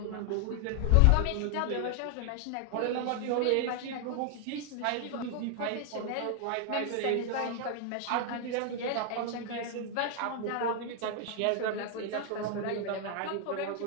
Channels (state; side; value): different; both; correlation 0.00